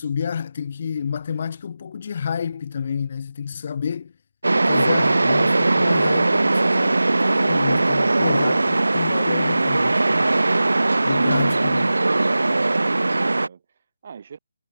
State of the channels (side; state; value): both; inverted; correlation -0.95